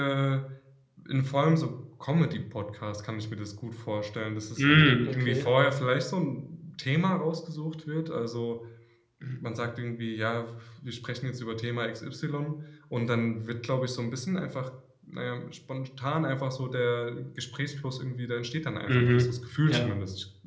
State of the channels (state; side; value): identical; both; correlation 1.00